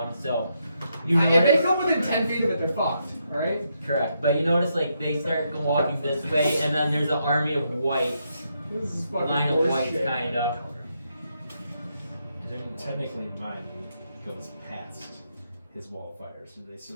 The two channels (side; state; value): both; inverted; correlation -0.79